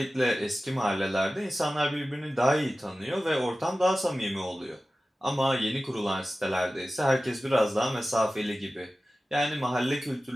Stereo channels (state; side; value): normal; both; correlation 0.95